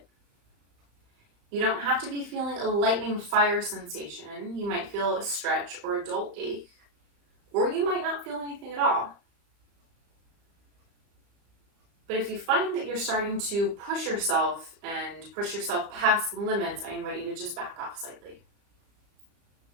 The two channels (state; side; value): late; left; 35 ms